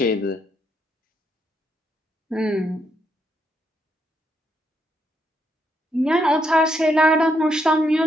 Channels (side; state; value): both; normal; correlation 0.77